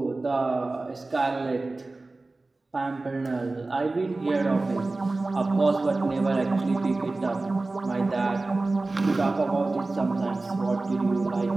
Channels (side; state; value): left; quieter; 3.2 dB